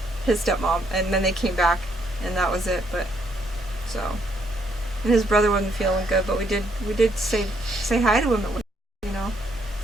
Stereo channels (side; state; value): both; normal; correlation 0.72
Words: his stepmom, and then they came back, and that was it. But so, and his brother wasn't feeling good, but we did say hi to him,